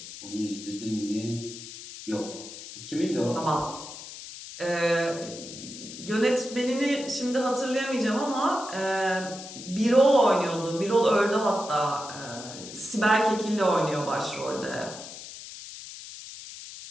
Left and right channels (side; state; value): left; noise; hiss, 13 dB below the sound